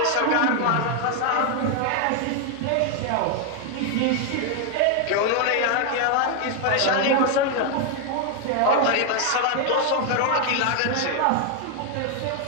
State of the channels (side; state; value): both; different; correlation 0.00